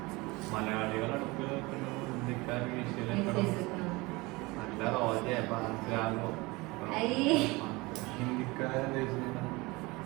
മലയാളികൾ അടുപ്പിൽ വെക്കുന്നതും ഹിന്ദിക്കാർ കീശയിൽ വെക്കുന്നതും. നല്ല റോജയാകുമ്പോ ഹിന്ദിക്കാരെന്താ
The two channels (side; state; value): left; quieter; 23.5 dB